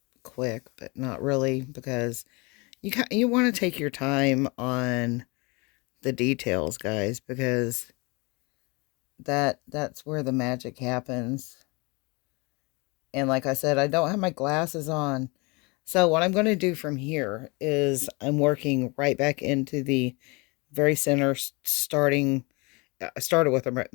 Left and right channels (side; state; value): right; quieter; 28.0 dB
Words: quick, but not really, because you want to take your time on the details, guys, because that's where the magic happens. And like I said, I don't have my glasses on. So what I'm going to do from here is I'm working right back into the very center, starting. I started with a